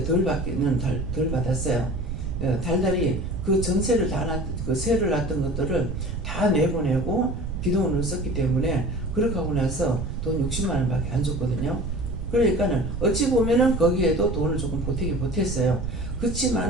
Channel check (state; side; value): noise; right; rumble, 4 dB below the sound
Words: 덜 받았어요. 달달이 그 전세를 그 세를 놨던 것들을 다 내보내고 비동원을 썼기 때문에 그렇게 하고 나서 돈 60만원 밖에 안 줬거든요. 그러니까는 어찌 보면은 거기에도 돈을 조금 보탰어요.